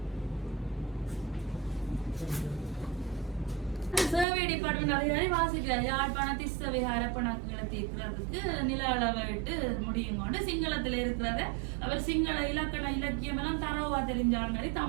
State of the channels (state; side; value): drops out; left; at 4.2 s